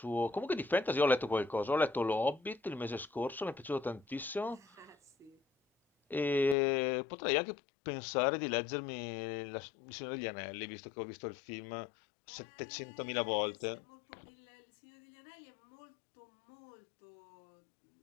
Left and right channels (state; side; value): drops out; right; at 6.6 s